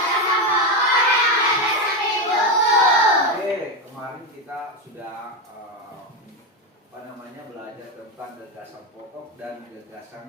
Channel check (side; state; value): both; normal; correlation 0.12